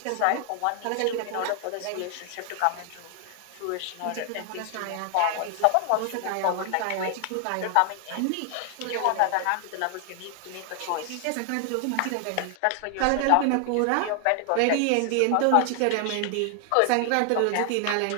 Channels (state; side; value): different; both; correlation 0.00